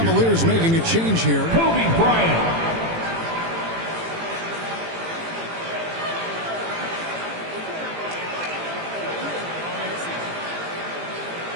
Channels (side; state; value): left; late; 18 ms